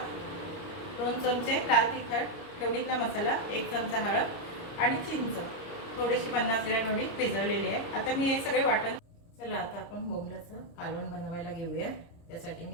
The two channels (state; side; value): late; right; 30 ms